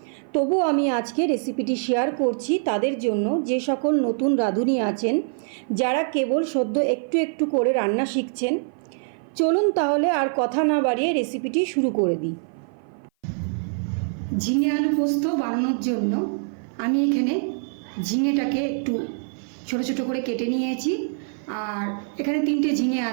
তবু আমি আজকে রেসিপিটি শেয়ার করছি তাদের জন্য যে সকল নতুন রাঁধুনি আছেন, যারা কেবল সদ্য একটু একটু করে রান্না শিখছেন। চলুন তাহলে আর কথা না বাড়িয়ে রেসিপিটি শুরু করে দিই। ঝিঙে আলু পোস্ত বানানোর জন্য আমি এখানে ঝিঙেটাকে একটু ছোট ছোট করে কেটে নিয়েছি। আর এখানে 3টে ঝিঙে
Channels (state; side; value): silent; left; 56 dB below the other